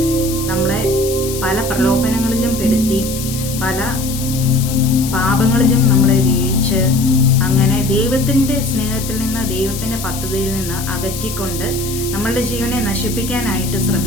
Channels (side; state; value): left; noise; hiss, 9 dB below the sound